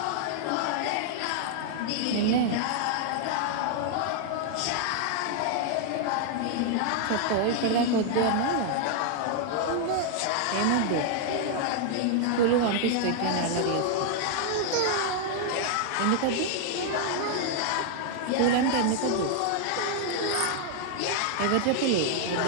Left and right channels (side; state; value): both; different; correlation 0.00